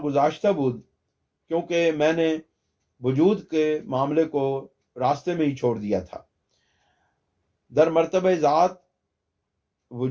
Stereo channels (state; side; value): identical; both; correlation 1.00